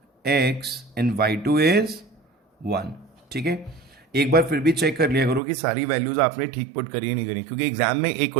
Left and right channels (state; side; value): drops out; left; at 5.4 s